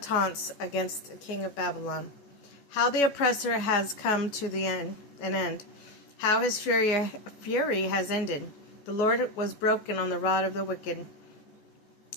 against the king of Babylon. How the oppressor has come to an end. How his fury has ended. The Lord was broken on the rod of the wicked,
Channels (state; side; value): late; right; 14 ms